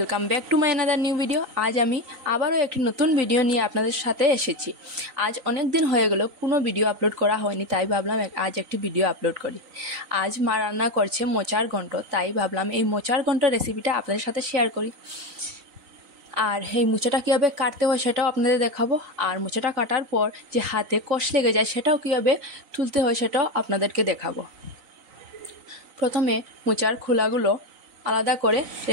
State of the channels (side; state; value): left; late; 3.9 ms